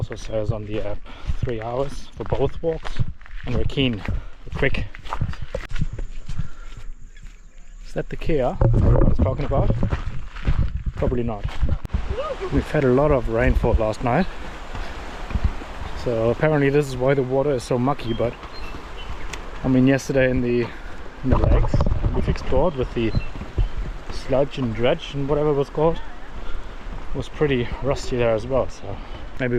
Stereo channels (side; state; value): both; identical; correlation 1.00